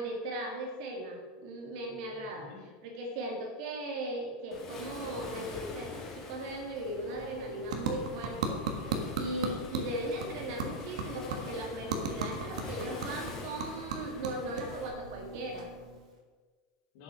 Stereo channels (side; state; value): both; normal; correlation 0.00